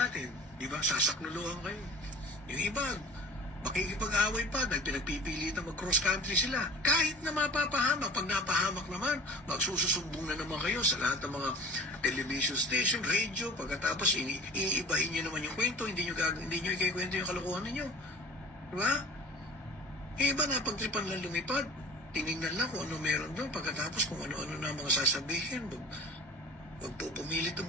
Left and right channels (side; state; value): both; normal; correlation 0.40